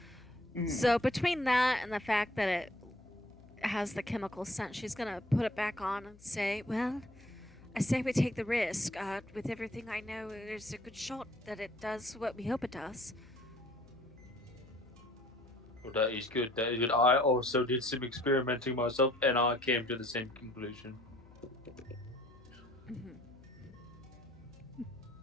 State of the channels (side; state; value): left; noise; hum, 23 dB below the sound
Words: Mhm. So between that and the fact that it has the chemical scent, she's gonna put it back on and say, "Well, I say we take the risk. With everything I know, there's a good shot that it does what we hope it does." Well, that is good. That is good. I also did some experimenting myself, and I came to the same conclusion. Mhm.